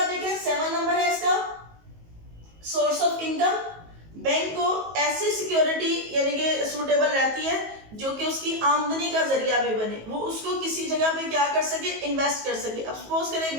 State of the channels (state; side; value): late; left; 19 ms